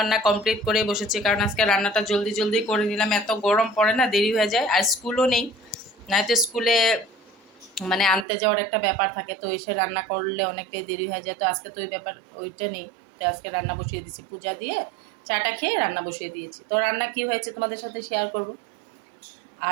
কমপ্লিট করে বসেছি, কারণ আজকে রান্নাটা জলদি জলদি করে নিলাম, এত গরম পড়ে না, দেরি হয়ে যায়। আর স্কুলও নেই, নয়তো স্কুলে মানে আনতে যাওয়ার একটা ব্যাপার থাকে, তো এসে রান্না করলে অনেকটাই দেরি হয়ে যায়। তো আজকে তো ওই ব্যাপার ওইটা নেই, তো আজকে রান্না বসিয়ে দিয়েছি, পূজা দিয়ে চাটা খেয়ে রান্না বসিয়ে দিয়েছি। তো রান্না কি হয়েছে তোমাদের সাথে শেয়ার করব।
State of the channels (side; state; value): left; drops out; at 8.2 s